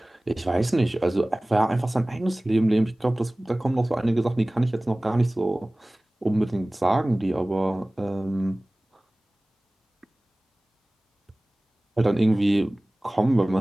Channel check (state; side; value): normal; both; correlation 0.98